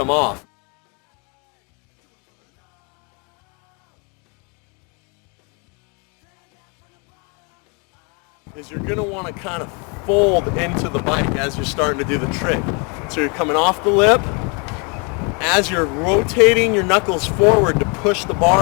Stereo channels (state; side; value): quieter; right; 33.5 dB